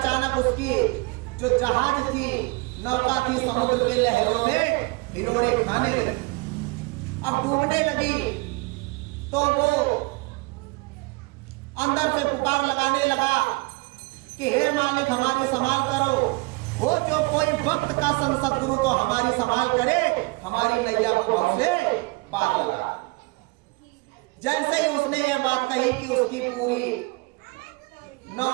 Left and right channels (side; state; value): left; quieter; 26.3 dB